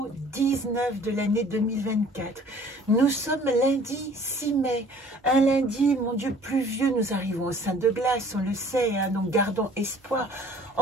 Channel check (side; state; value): both; normal; correlation 0.52